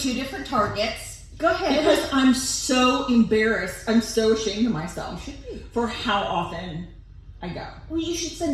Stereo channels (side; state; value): both; identical; correlation 1.00